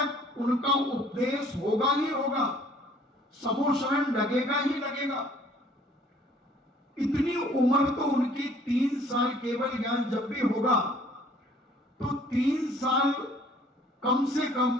उनका उपदेश होगा ही होगा, समोश्रवण लगेगा ही लगेगा। इतनी उम्र तो उनकी 3 साल केवल ज्ञान जब भी होगा तो 3 साल कम से कम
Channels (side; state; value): both; normal; correlation 0.57